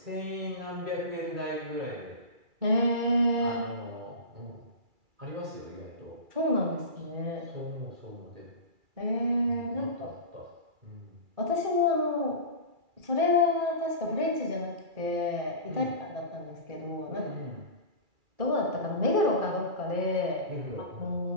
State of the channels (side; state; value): left; late; 2.3 ms